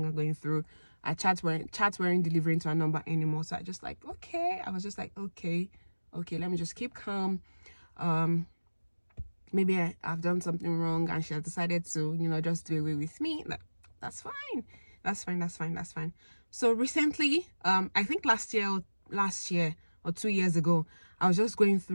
going through. Our chats weren't delivering to her number anymore. So I was just like, okay, let me just keep calm. Maybe I've done something wrong and she has decided to, you know, just do away with me. That's fine. So recently, I think last year or 2 years ago, I was just going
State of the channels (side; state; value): both; inverted; correlation -1.00